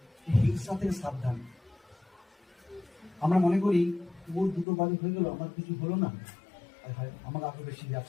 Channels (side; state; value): right; drops out; at 4.7 s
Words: হিংসা থেকে সাবধান। আমরা মনে করি ওর দুটো বাড়ি হয়ে গেল, আমার কিছু হলো না, আমার আরো বেশি